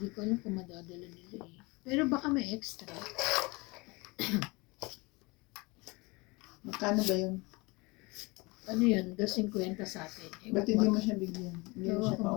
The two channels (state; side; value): quieter; right; 25.5 dB